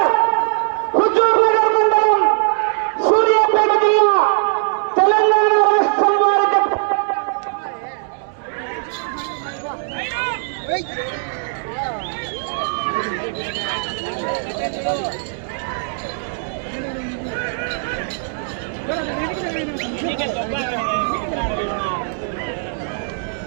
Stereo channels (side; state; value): left; silent; 66 dB below the other